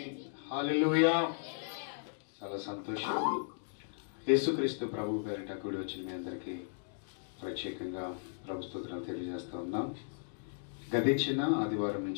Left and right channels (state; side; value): silent; right; digital silence